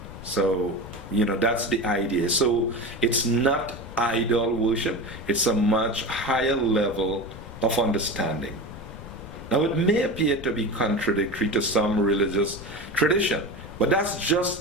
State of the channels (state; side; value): noise; left; rumble, 14 dB below the sound